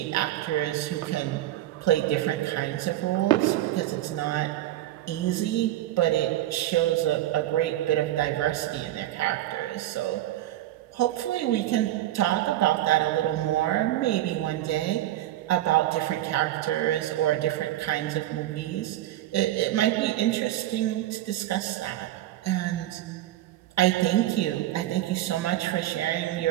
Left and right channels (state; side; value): quieter; left; 14.1 dB